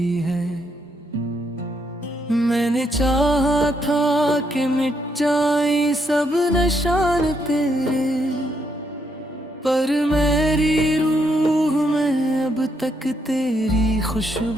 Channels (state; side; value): normal; both; correlation 0.76